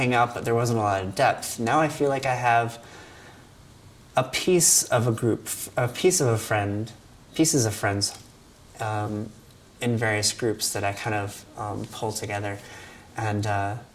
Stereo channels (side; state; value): both; identical; correlation 1.00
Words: out, but there wasn't a lot of depth. Now I feel like I have a piece of a group, pieces of friends in various groups that I kind of pull together. And I